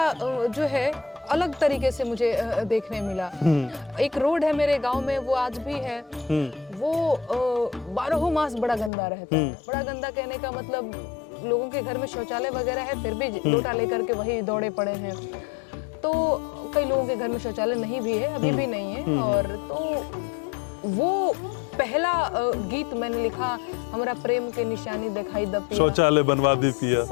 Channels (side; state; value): right; drops out; at 8.9 s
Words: जो है अलग तरीके से मुझे देखने मिला। एक रोड है मेरे गांव में, वो आज भी है। वो 12 मास बड़ा गंदा रहता है। बड़ा गंदा कहने का मतलब लोगों के घर में शौचालय वगैरह है, फिर भी लोटा लेकर के वही दौड़े पड़े हैं। तो कई लोगों के घर में शौचालय नहीं भी है, अभी भी नहीं है। और तो वो पहला गीत मैंने लिखा, हमारा प्रेम के निशानी दिखाई द पिया, शौचालय बनवा दी पिया,